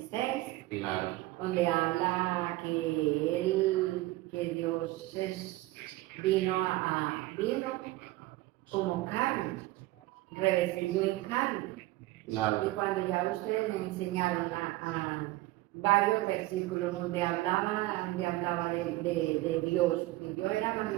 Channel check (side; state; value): left; quieter; 18.4 dB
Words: Claro. donde habla que Dios vino como carne, revestido en carne. Claro. Y cuando ya ustedes me enseñaron a varios versículos donde hablaba de Dios, que Dios era